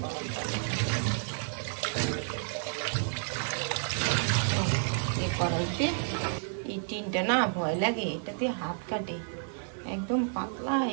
গরম পানি। কড়াইতে এই টিনটা না ভয় লাগে, এটা দিয়ে হাত কাটে, একদম পাতলা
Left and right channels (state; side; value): silent; left; digital silence